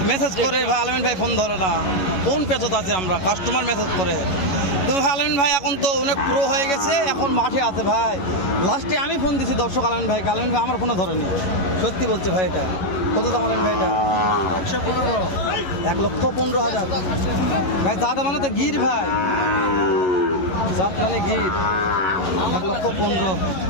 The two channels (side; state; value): right; late; 11 ms